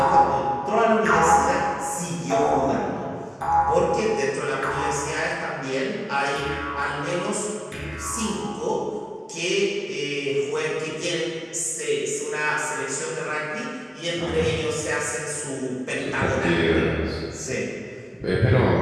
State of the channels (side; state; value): both; identical; correlation 1.00